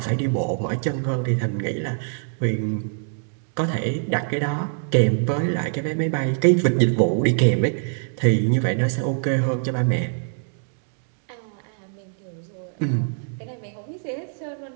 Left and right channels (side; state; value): left; silent; digital silence